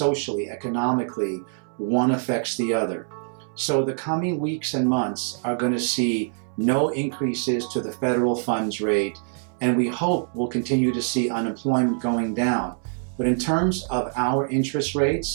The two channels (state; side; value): silent; left; 62 dB below the other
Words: economically, one affects the other. So the coming weeks and months are going to see no increases to the federal funds rate, and we hope we'll continue to see unemployment going down. But in terms of our interest